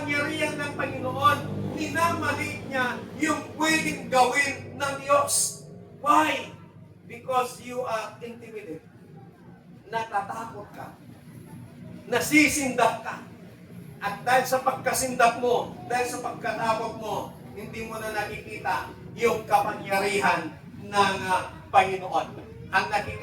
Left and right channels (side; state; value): both; identical; correlation 1.00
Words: ng Panginoon. Minamaliit niya yung pwedeng gawin ng Diyos. Why? Because you are intimidated. Natatakot ka. Nasisindap ka. At dahil sa pagkasindap mo, dahil sa pagkatakot mo, hindi mo na nakikita yung kapangyarihan ng Panginoon. Ang